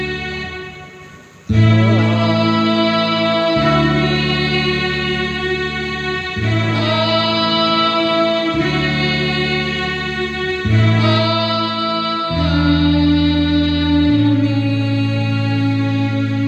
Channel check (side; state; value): both; identical; correlation 1.00